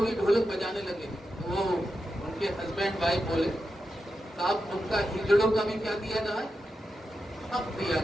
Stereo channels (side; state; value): both; normal; correlation 0.89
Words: ढोलक बजाने लगे। वो उनके हस्बैंड वाइफ बोले, साहब उनका हिजड़ों का भी क्या दिया जाए? हक दिया